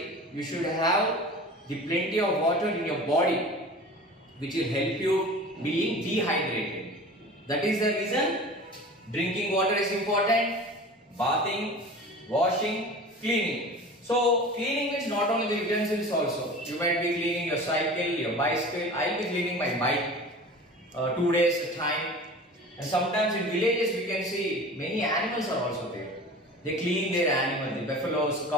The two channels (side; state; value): both; normal; correlation 0.38